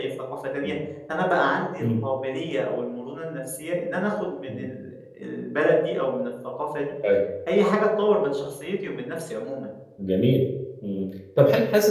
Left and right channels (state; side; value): identical; both; correlation 1.00